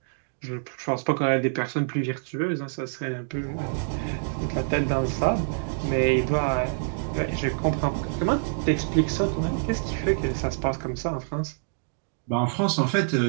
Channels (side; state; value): left; silent; digital silence